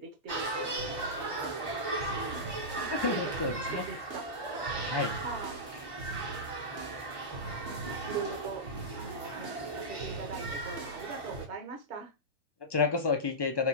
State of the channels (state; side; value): late; right; 1.2 ms